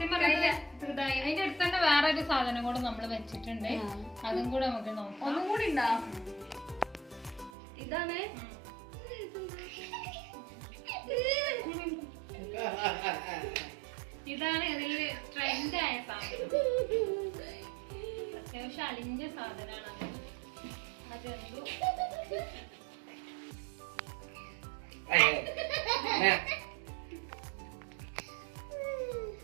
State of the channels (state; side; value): drops out; left; at 7.5 s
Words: പറഞ്ഞാൽ അതിന്റെ അടുത്ത് തന്നെ വേറെ ഒരു സാധനം കൂടെ നമ്മൾ വെച്ചിട്ടുണ്ട്, അതും കൂടെ നമുക്ക് നോക്കാം. ഒന്നും കൂടി ഉണ്ടാ. ഇതാണ് ഇതാണ് ഇതില് ട്രെൻഡ് ആയ സാധനം. അത്യാവശ്യം അലിഞ്ഞ സാധനമാണ്. അതെന്തോ